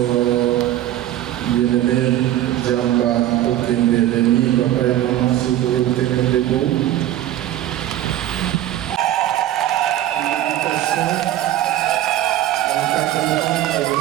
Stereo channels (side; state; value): left; quieter; 13.1 dB